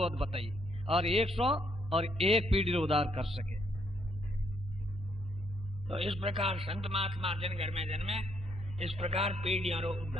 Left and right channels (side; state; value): both; normal; correlation 0.72